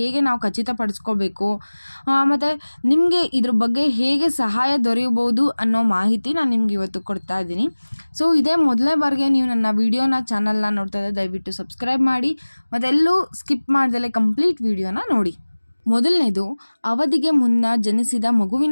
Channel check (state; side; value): inverted; both; correlation -1.00